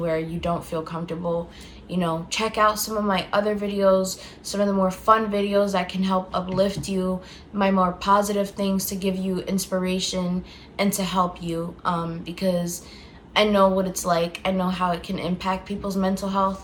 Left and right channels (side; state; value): both; identical; correlation 1.00